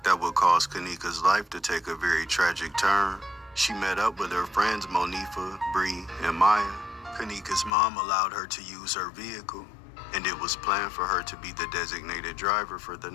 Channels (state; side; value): drops out; right; at 7.7 s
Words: that would cause Kenneka's life to take a very tragic turn. She met up with her friends Monifa, Bree, and Maya. Kenneka's mom allowed her to use her vehicle, and it was planned for her to be the designated driver for the